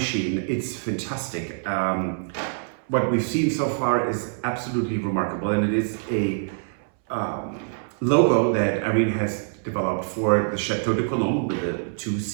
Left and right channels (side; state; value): left; silent; 62 dB below the other